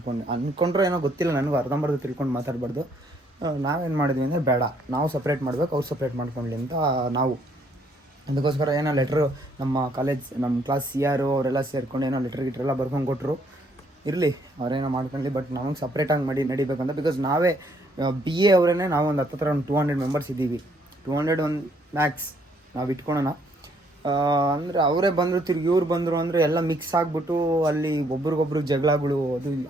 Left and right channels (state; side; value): normal; both; correlation 0.67